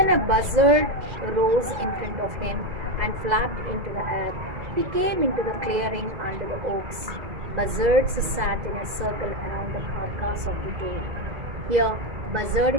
a buzzard rose in front of him and flapped into the air. He came into the clearing under the oaks. Buzzards sat in a circle around the carcass of the doe. Here, buzzard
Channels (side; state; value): left; late; 2.0 ms